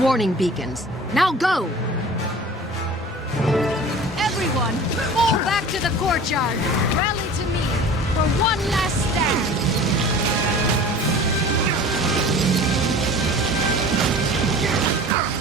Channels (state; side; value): normal; both; correlation 0.41